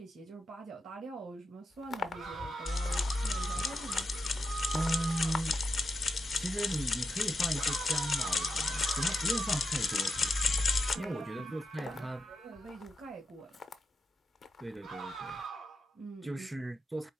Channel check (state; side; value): normal; both; correlation 0.84